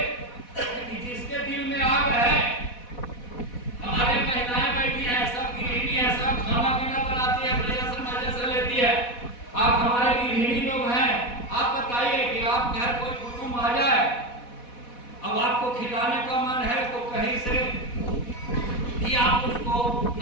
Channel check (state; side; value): late; right; 4.1 ms